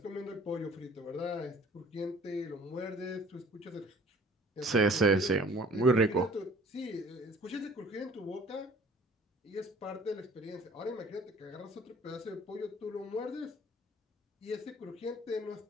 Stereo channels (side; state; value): both; normal; correlation 0.51